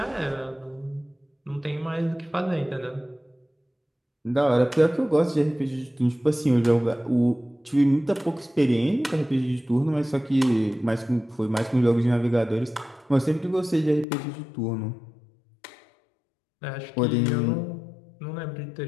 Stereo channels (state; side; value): drops out; right; at 14.1 s